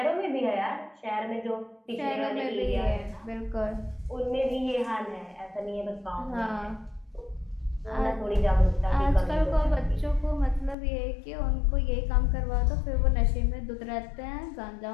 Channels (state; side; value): drops out; right; at 10.8 s